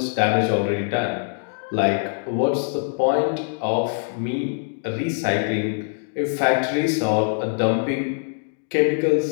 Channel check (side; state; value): right; silent; digital silence